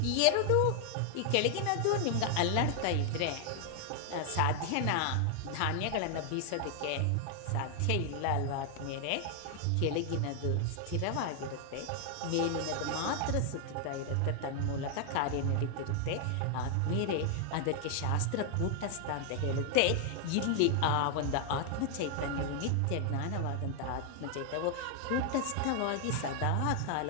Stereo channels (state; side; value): different; both; correlation 0.00